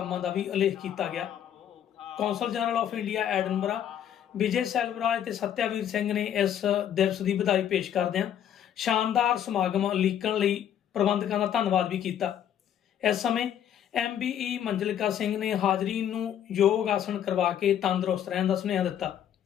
ਦਾ ਵੀ ਉਲੇਖ ਕੀਤਾ ਗਿਆ। Consul general of India Edinburgh Vijay Selvaraj ਤੇ ਸਤਿਆਵੀਰ ਸਿੰਘ ਨੇ ਇਸ ਦਿਵਸ ਦੀ ਵਧਾਈ ਪੇਸ਼ ਕਰਦਿਆਂ ਸ਼ਾਨਦਾਰ ਸਮਾਗਮ ਉਲੀਕਣ ਲਈ ਪ੍ਰਬੰਧਕਾਂ ਦਾ ਧੰਨਵਾਦ ਵੀ ਕੀਤਾ। ਇਸ ਸਮੇਂ MBE ਮੰਜਲਿਕਾ ਸਿੰਘ ਨੇ ਹਾਜ਼ਰੀਨ ਨੂੰ ਯੋਗ ਆਸਣ ਕਰਵਾ ਕੇ ਤੰਦਰੁਸਤ ਰਹਿਣ ਦਾ ਸੁਨੇਹਾ ਦਿੱਤਾ।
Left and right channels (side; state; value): right; quieter; 10.0 dB